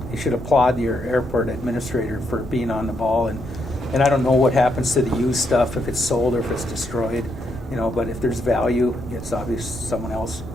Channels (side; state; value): both; normal; correlation 0.78